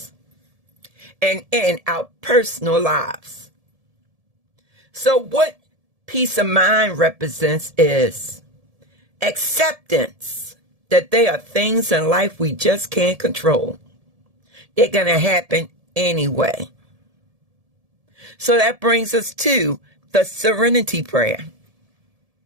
and in our personal lives. So what peace of mind represents is acceptance that there are things in life we just can't control. They're going to happen anyway. So that brings us to the serenity prayer.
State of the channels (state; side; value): late; left; 1.7 ms